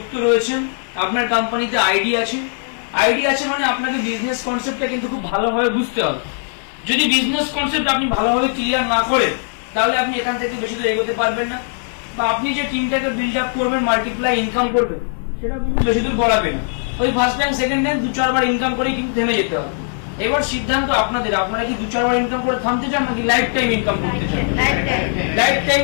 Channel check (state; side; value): silent; right; digital silence